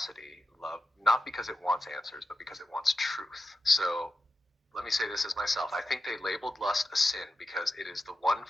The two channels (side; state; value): both; normal; correlation 0.90